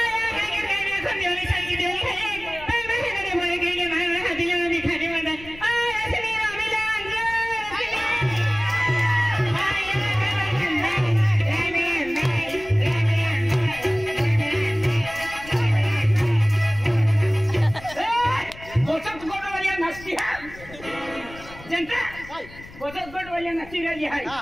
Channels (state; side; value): noise; left; rumble, 18 dB below the sound